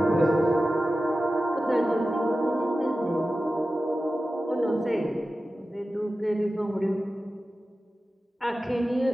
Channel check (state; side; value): normal; both; correlation 0.94